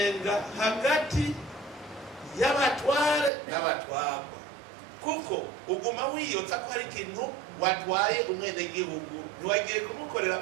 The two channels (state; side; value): drops out; left; at 3.3 s